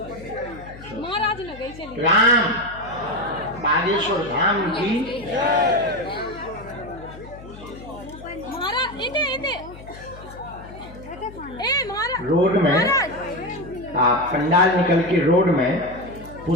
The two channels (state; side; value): noise; left; hum, 17 dB below the sound